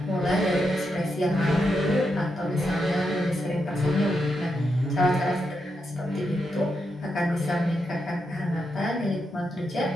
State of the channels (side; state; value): both; normal; correlation 0.84